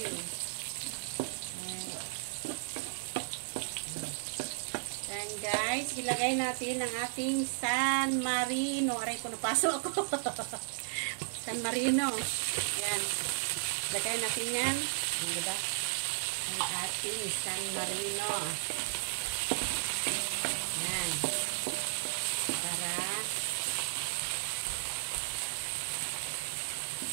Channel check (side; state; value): left; silent; digital silence